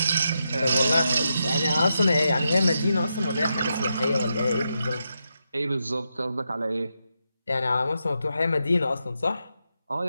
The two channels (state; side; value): inverted; both; correlation -0.85